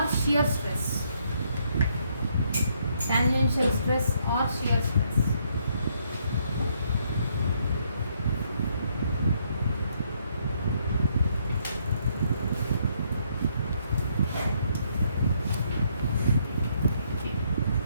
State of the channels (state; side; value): inverted; both; correlation -0.72